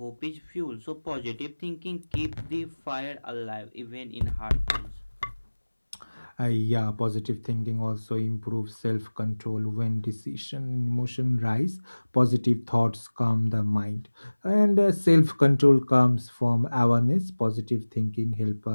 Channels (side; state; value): both; inverted; correlation -1.00